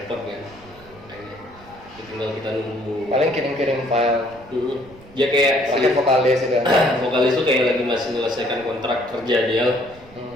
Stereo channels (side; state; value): right; noise; rumble, 23 dB below the sound